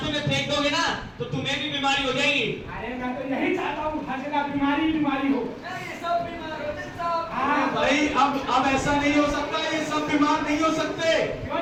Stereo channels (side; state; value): both; identical; correlation 1.00